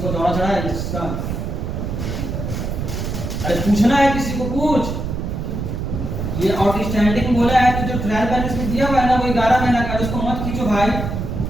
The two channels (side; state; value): right; noise; rumble, 4 dB below the sound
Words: को दौड़ा चढ़ा है इसका? अरे पूछना है किसी को, पूछ। ये आउटस्टैंडिंग बोला है तो जो ट्रायल बैलेंस में दिया हुआ है ना वो 11 महीना का, उसको मत खींचो भाई,